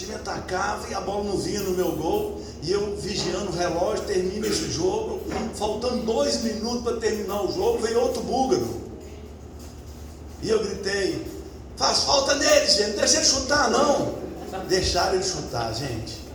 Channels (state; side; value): identical; both; correlation 1.00